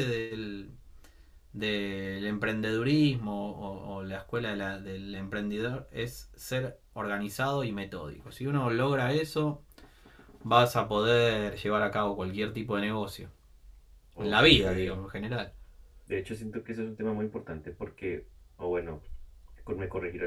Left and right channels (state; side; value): identical; both; correlation 1.00